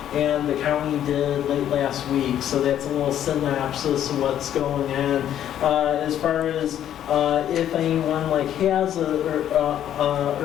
and the county did late last week. So that's a little synopsis of what's going on. As far as if anyone like has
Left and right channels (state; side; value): quieter; right; 10.7 dB